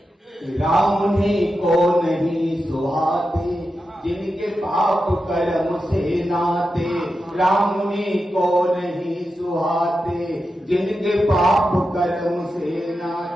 राम उन्हीं को नहीं सुहाते जिनके पाप कर्म से नाते, राम उन्हीं को नहीं सुहाते जिनके पाप कर्म से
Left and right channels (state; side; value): normal; both; correlation 0.90